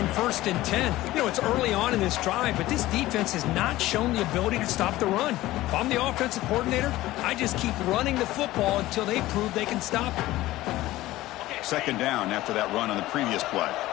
1st and 10. You know, it's early on in this drive, but this defense has not shown the ability to stop the run. If I'm the offensive coordinator, I just keep running the football until they prove they can stop it. 2nd down after that run on the previous play.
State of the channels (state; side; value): quieter; right; 16.7 dB